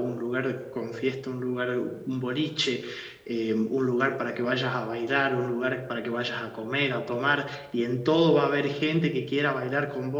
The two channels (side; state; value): both; identical; correlation 1.00